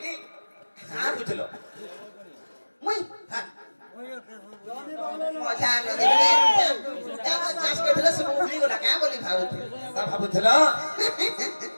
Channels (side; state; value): both; inverted; correlation -1.00